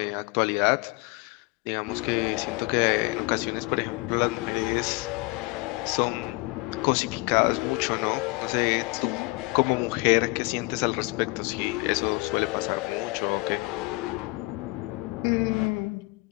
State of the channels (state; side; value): quieter; right; 24.7 dB